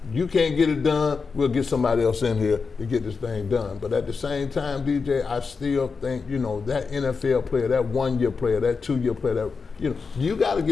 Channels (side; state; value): right; quieter; 5.0 dB